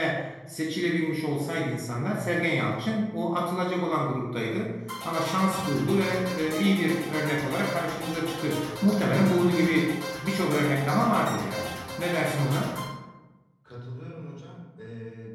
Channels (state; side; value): identical; both; correlation 1.00